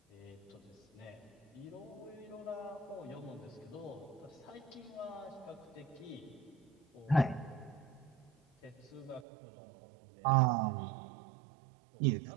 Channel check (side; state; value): left; drops out; at 9.2 s